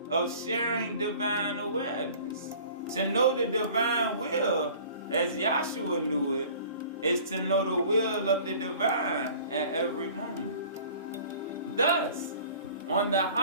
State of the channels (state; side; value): inverted; both; correlation -0.47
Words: of sharing divine awareness. To know the divine will, as Yeshua knew it, is to know the will of the divine at every moment. Thus, on the